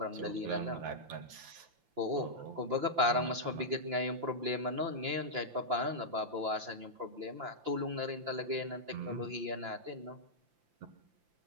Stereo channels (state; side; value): late; left; 5.8 ms